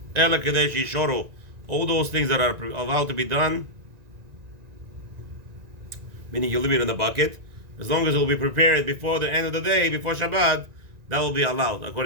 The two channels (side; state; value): left; late; 1.9 ms